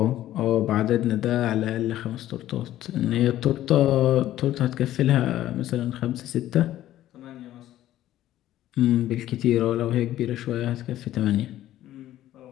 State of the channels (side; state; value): right; quieter; 13.5 dB